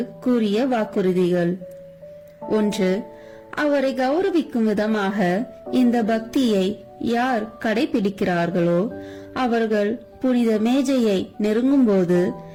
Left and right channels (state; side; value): identical; both; correlation 1.00